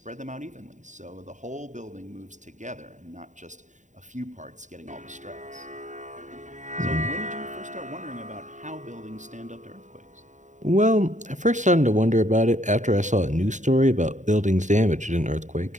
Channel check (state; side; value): late; left; 0.36 ms